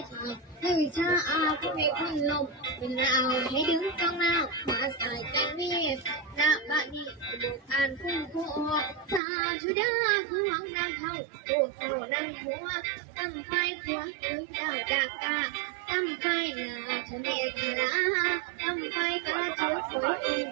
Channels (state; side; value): drops out; left; at 9.2 s